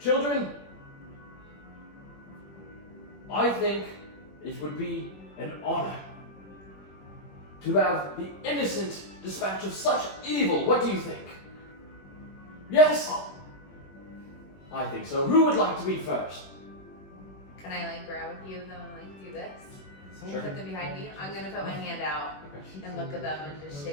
I think it would be an honor to have the innocent dispatch of such evil. What do you think? Yes? I think so. Who would like to be first? Can I like grab a few of them and like do this? Sure. Put them behind me. I'm gonna put my hand out and look at them and just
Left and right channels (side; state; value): right; late; 21 ms